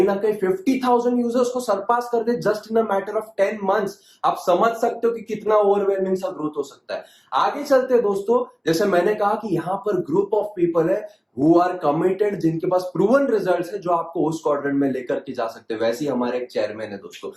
ना कहीं 50,000 यूजर्स को सरपास कर they just in a matter of 10 months. आप समझ सकते हो कि कितना ओवरवेलमिंग सा ग्रोथ हो सकता है। आगे चलते हैं दोस्तों, जैसे मैंने कहा कि यहां पर ग्रुप ऑफ पीपल है हु आर कमिटेड, जिनके पास प्रूवन रिजल्ट्स है जो आपको उस क्वाड्रेंट में लेकर के जा सकते हैं। वैसे ही हमारे एक चेयरमैन है दोस्तों,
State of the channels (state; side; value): identical; both; correlation 1.00